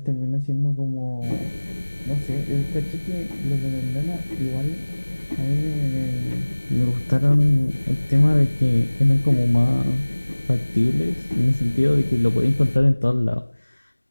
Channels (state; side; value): inverted; both; correlation -1.00